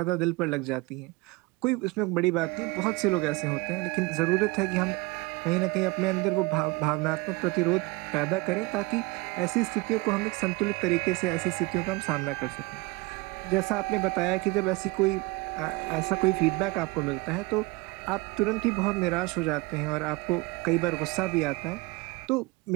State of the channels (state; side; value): quieter; left; 24.6 dB